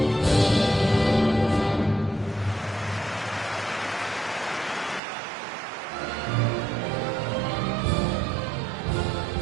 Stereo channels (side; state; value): left; drops out; at 5.0 s